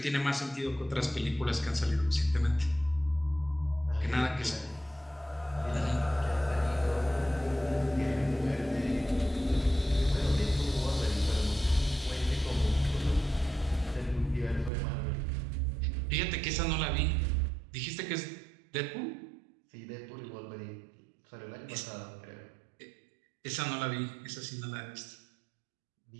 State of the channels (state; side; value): drops out; left; at 14.7 s